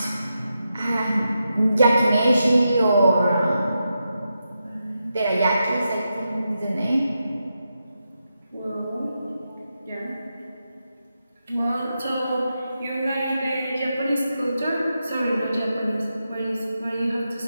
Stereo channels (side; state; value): both; inverted; correlation -0.87